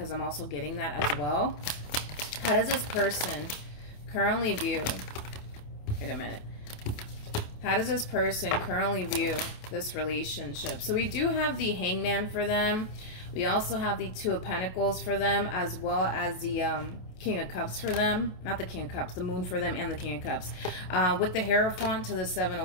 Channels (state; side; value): late; right; 27 ms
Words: I'm also getting that as well. How does this person currently view, wait a minute. How does this person currently view this relationship? So we do have the Hangman for them. We also have the Two of Pentacles for them, as well as the King of Cups for them. Not the King of Cups, the Moon for them, and the King of Cups. With the Hierophant to the Seven